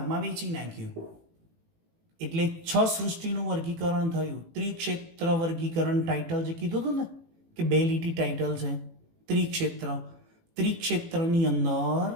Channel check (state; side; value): late; left; 18 ms